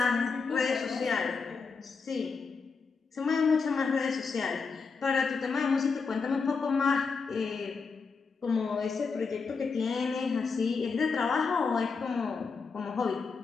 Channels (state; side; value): quieter; right; 5.0 dB